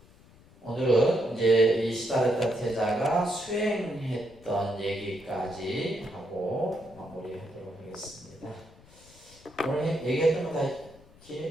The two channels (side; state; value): left; noise; rumble, 25 dB below the sound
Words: 오늘은 이제 이 시다르타 태자가 수행했던 얘기까지 하고 마무리하도록 하겠습니다. 오늘 얘기했던 거 다